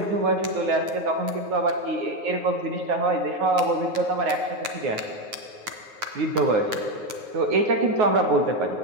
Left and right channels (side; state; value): left; late; 9.5 ms